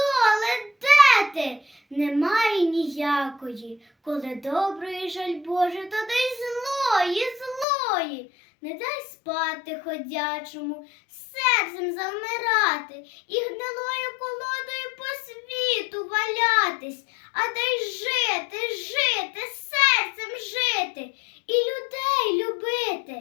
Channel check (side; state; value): right; drops out; at 7.7 s